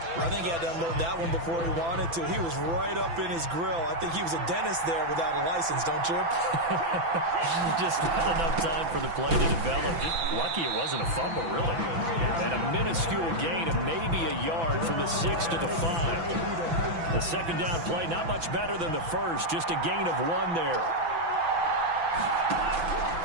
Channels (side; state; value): left; late; 6.0 ms